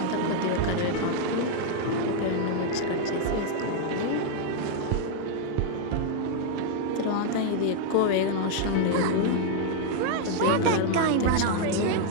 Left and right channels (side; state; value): both; different; correlation 0.00